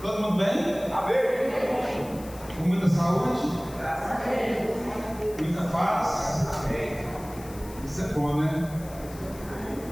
Todo mundo bem? Amém. Com muita saúde? Graças a Deus. Muita paz? Amém. Isso é bom, né?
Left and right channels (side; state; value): left; noise; hiss, 19 dB below the sound